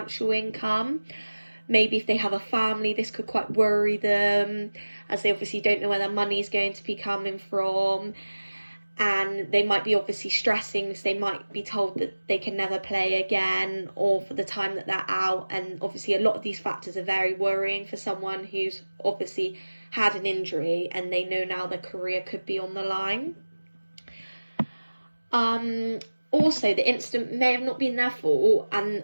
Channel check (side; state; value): both; inverted; correlation -1.00